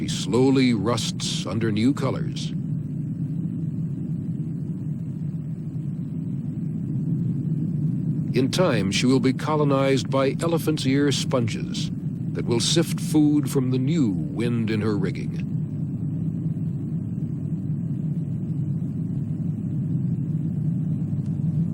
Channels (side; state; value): both; identical; correlation 1.00